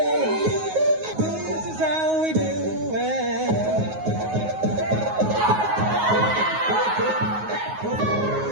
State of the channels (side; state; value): left; late; 9.4 ms